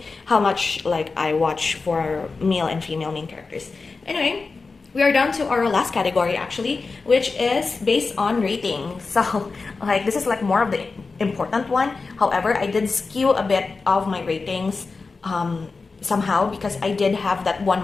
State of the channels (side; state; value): right; quieter; 4.2 dB